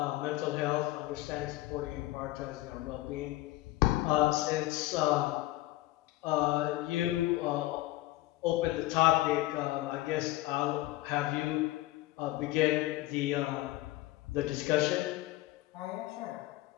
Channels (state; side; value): quieter; right; 17.5 dB